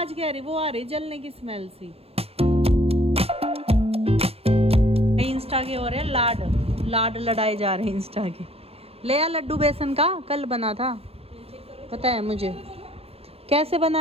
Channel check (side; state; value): left; late; 0.29 ms